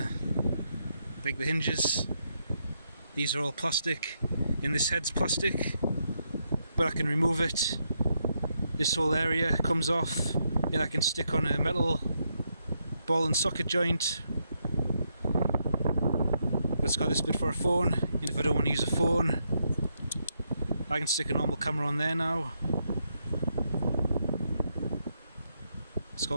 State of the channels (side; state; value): both; inverted; correlation -0.80